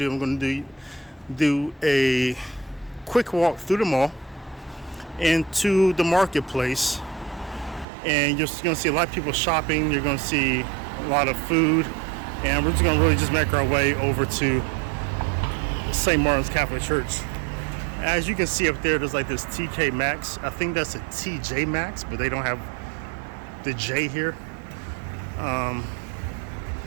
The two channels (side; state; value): left; drops out; at 7.9 s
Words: a quick walk through the mall into the marketplace, and you're gonna see a lot of people shopping. You're gonna see a lot of food, and we're just gonna really just make our way over to St. Martin's Catholic Church. As you can see up there, there's like this TK Maxx. I think that's a TJ Maxx, but they don't have the J here.